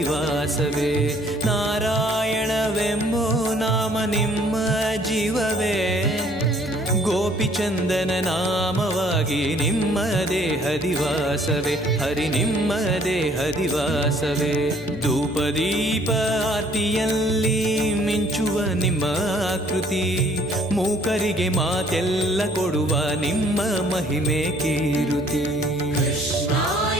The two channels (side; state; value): left; noise; hum, 19 dB below the sound